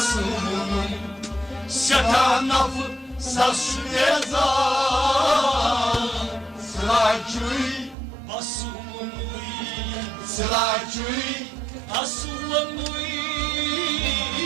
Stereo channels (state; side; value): drops out; left; at 8.0 s